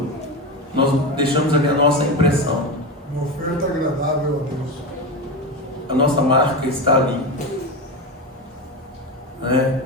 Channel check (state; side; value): normal; both; correlation 0.19